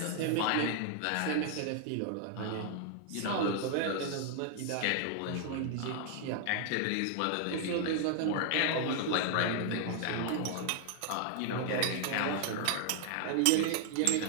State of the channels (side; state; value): both; different; correlation 0.00